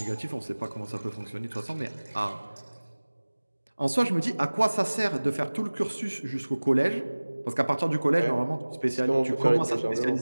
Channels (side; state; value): both; inverted; correlation -1.00